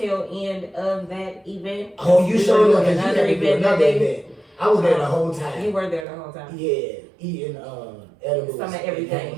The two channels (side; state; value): left; drops out; at 6.1 s